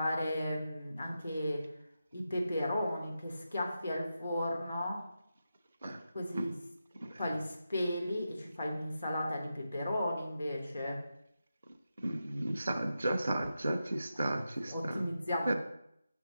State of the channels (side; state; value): both; inverted; correlation -0.89